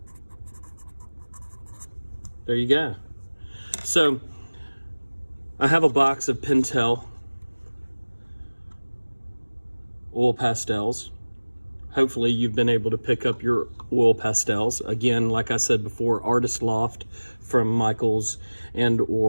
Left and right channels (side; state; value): both; inverted; correlation -1.00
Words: There you go. So I have a box of Pentel oil pastels. Hopefully you've been able to pick up your oil pastels. Again, like I said before, Artist Loft from Michaels and